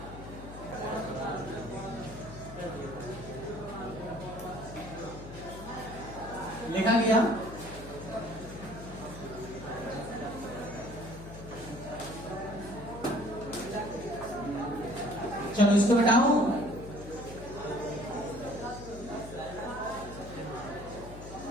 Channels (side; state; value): left; noise; hum, 13 dB below the sound